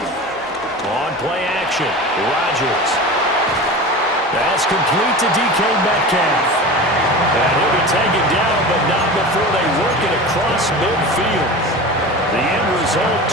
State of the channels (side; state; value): both; normal; correlation 0.32